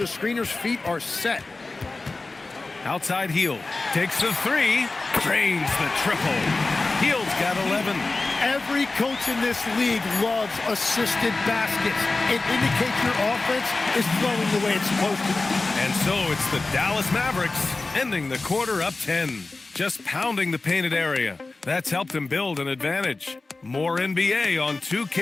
screener's feet are set. Outside Heel. Takes the 3. Drains the triple. Heel's got 11. Every coach in this league loves assisted baskets. It indicates your offense is flowing the way it's supposed to. And so it's the Dallas Mavericks ending the quarter up 10. Just pounding the painted area. That's helped them build an advantage. More NBA on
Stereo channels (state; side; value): quieter; right; 3.4 dB